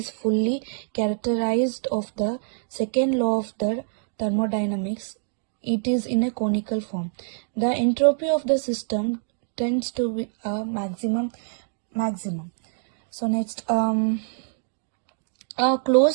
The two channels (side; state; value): left; silent; digital silence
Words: fully characterized of the second law of the thermodynamics. It is in a conical form. The entropy of the system tends to be a maximum. So next, a closed